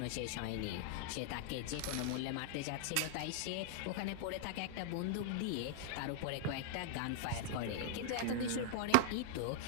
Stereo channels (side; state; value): both; different; correlation -0.01